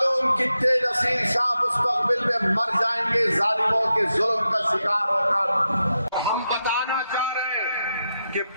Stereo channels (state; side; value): inverted; both; correlation -0.87